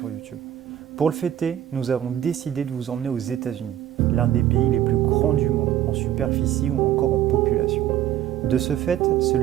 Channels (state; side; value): quieter; left; 11.8 dB